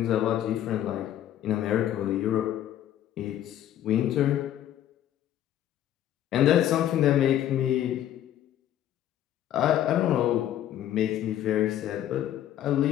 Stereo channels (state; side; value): quieter; right; 11.7 dB